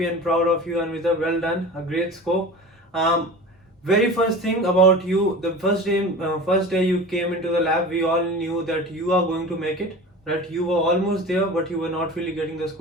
and proud of you, Anvita. Well done, a great score. Very first thing about you, the first day you came into the lab, we all knew that you are going to make it. Right? You were almost there, but you were not really getting the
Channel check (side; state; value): both; normal; correlation 0.35